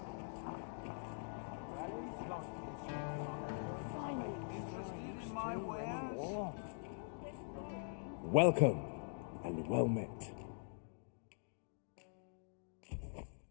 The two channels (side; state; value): right; silent; digital silence